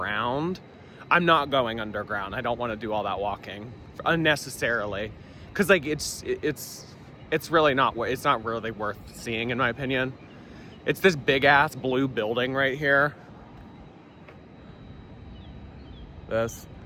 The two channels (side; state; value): both; identical; correlation 1.00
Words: I'm not going underground. I don't want to do all that walking unnecessarily, because like it's really not worth seeing in my opinion. It's this big ass blue building right here. This.